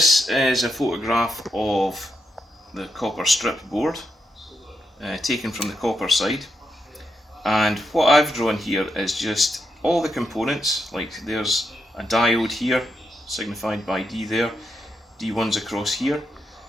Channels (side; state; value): both; normal; correlation 0.83